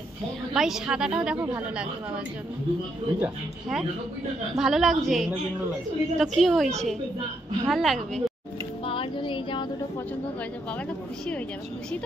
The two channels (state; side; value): normal; both; correlation 0.77